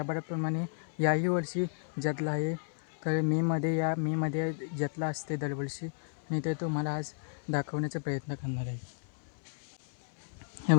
याही वर्षी जत्रा आहे. तर मेमध्ये जत्रा असते दरवर्षी आणि ते तुम्हाला आज दाखवण्याचा प्रयत्न करणार आहे. हे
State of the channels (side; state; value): right; silent; 56 dB below the other